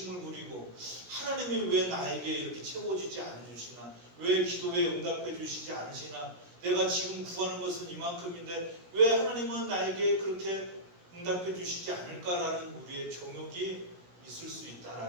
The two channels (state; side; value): late; left; 16 ms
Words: 부리고 하나님이 왜 나에게 이렇게 채워주지 않으시나, 왜 기도에 응답해 주시지 않으시나, 내가 지금 구하는 것은 이만큼인데 왜 하나님은 나에게 그렇게 응답해 주시지 않을까라는 우리의 정욕이 있을 수